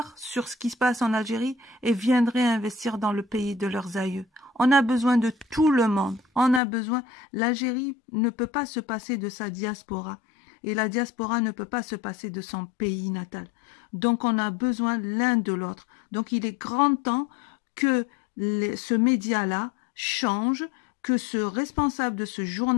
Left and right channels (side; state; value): right; drops out; at 6.6 s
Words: sur ce qui se passe en Algérie et viendraient investir dans le pays de leurs aïeux. On a besoin de tout le monde. On a besoin. L'Algérie ne peut pas se passer de sa diaspora. Et la diaspora ne peut pas se passer de son pays natal. Donc on a besoin l'un de l'autre. Donc il est grand temps que ce média-là change, que ce responsable de ce